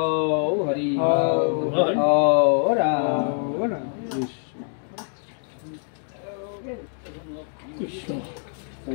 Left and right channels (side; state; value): right; silent; digital silence